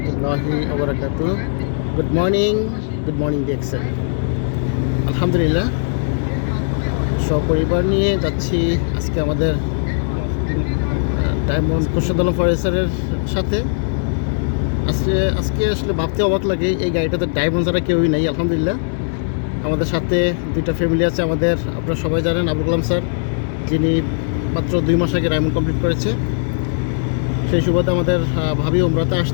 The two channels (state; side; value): silent; right; digital silence